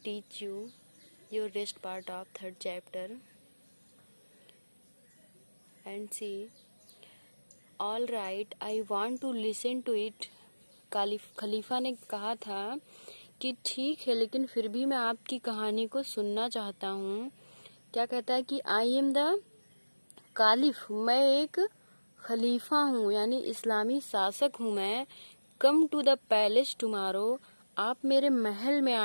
you your rest part of third chapter. And see, all right, I want to listen to it. खलीफा ने कहा था कि ठीक है, लेकिन फिर भी मैं आपकी कहानी को सुनना चाहता हूँ। क्या कहता है कि आई एम द कालिफ, मैं एक खलीफा हूँ, यानी इस्लामी शासक हूँ मैं। Come to the palace tomorrow, आप मेरे महल में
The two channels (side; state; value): both; inverted; correlation -1.00